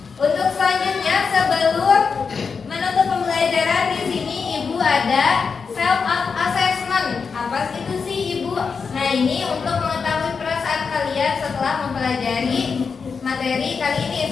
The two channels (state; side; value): quieter; right; 5.4 dB